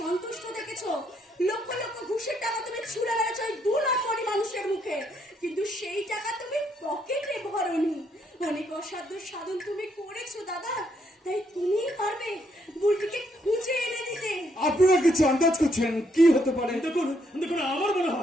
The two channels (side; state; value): both; normal; correlation 0.73